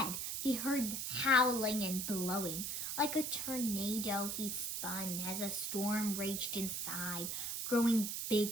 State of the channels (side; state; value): right; noise; hiss, 2 dB below the sound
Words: he heard howling and blowing. Like a tornado, he spun as a storm raged inside, growing